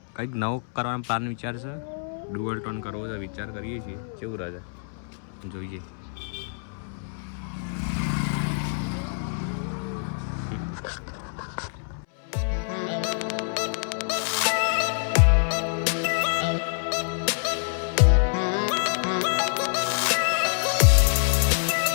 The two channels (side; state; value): right; silent; 61 dB below the other